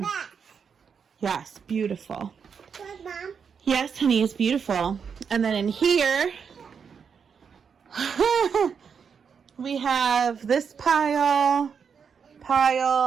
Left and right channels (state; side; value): quieter; left; 6.5 dB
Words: Yes, beautiful. Yes, honey, it's beautiful. And then in here, we have this pile,